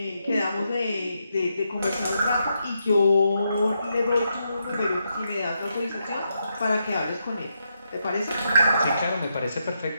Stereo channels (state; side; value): inverted; both; correlation -0.82